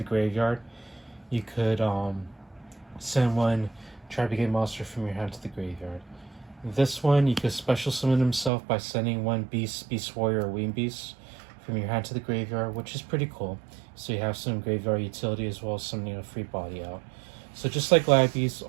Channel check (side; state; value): left; drops out; at 8.5 s